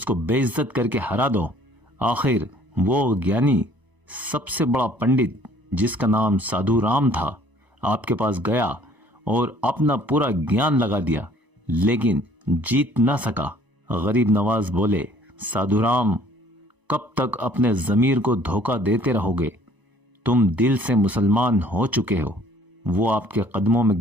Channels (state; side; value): late; left; 1.0 ms